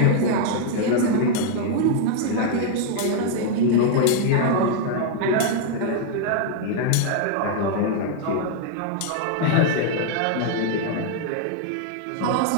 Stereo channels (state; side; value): different; both; correlation 0.00